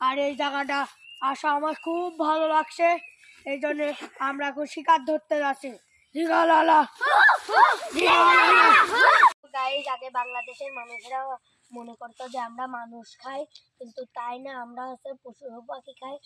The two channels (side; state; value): both; identical; correlation 1.00